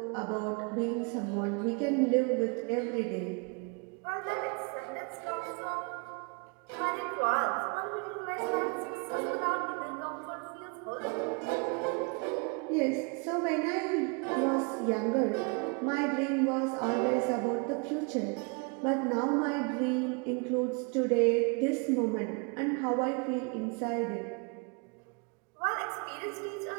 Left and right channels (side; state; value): left; quieter; 33.4 dB